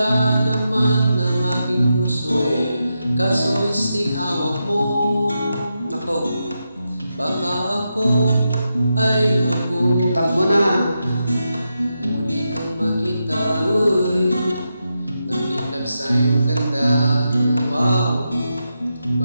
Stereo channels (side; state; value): both; inverted; correlation -0.87